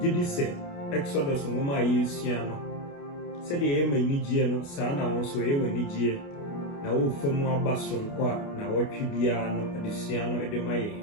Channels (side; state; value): right; late; 29 ms